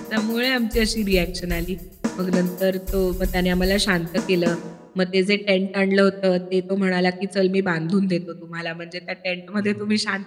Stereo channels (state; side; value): identical; both; correlation 1.00